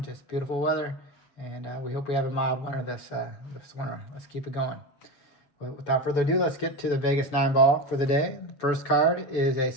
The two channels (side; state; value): right; late; 7.0 ms